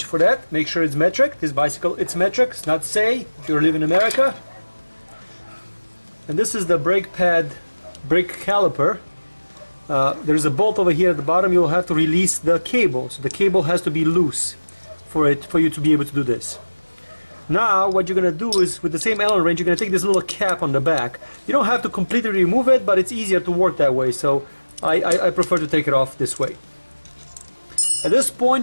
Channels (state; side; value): inverted; both; correlation -1.00